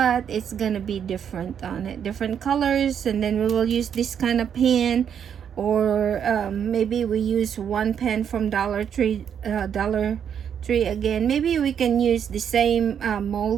it's gonna be different on it, different colors. And then we will use this kind of pen, or maybe we use one pen from Dollar Tree again. Maybe we can use the same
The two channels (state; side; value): quieter; left; 8.2 dB